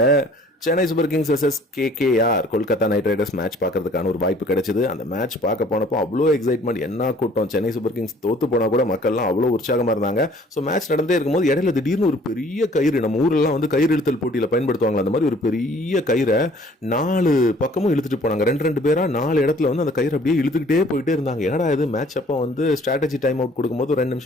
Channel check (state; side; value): normal; both; correlation 0.55